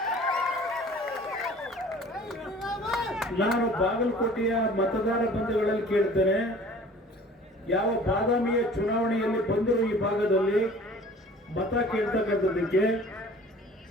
ನಾನು ಬಾಗಲಕೋಟೆಯ ಮತದಾರ ಬಂಧುಗಳಲ್ಲಿ ಕೇಳ್ತೇನೆ, ಯಾವ ಬಾದಾಮಿಯ ಚುನಾವಣೆಯಲ್ಲಿ ಬಂದರು ಈ ಭಾಗದಲ್ಲಿ ಮತ ಕೇಳ್ತಕ್ಕಂಥದ್ದಕ್ಕೆ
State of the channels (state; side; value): normal; both; correlation 0.48